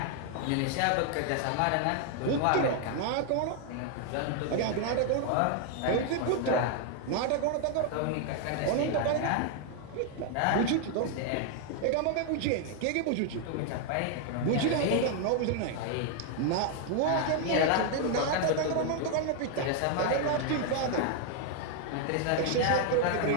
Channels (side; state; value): both; different; correlation 0.00